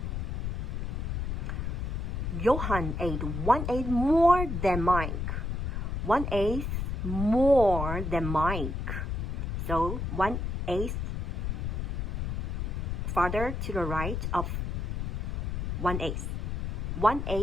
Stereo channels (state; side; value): noise; left; rumble, 2 dB below the sound